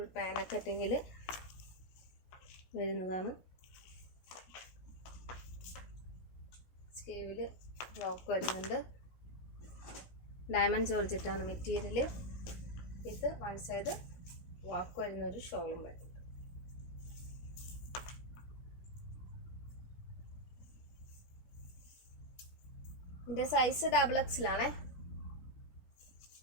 പാന കട്ടിങ്ങിൽ വരുന്നതാണ്. സ്ലീവിൽ വർക്ക് വരുന്നുണ്ട്. ഡയമണ്ട് ജോർജറ്റാണ് മെറ്റീരിയൽ. ഇത് വൺ സൈഡ് വർക്ക് വരുന്ന ഒരു ഷോളും വരുന്നുണ്ട്. ഇതിൻ്റെ സൈസ് XXL.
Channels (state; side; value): late; right; 17 ms